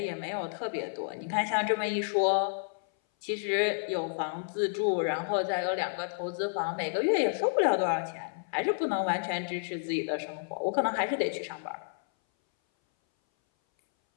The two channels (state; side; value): silent; right; 57 dB below the other